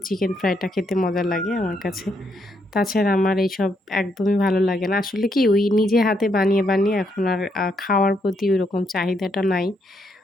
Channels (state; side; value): normal; both; correlation 0.76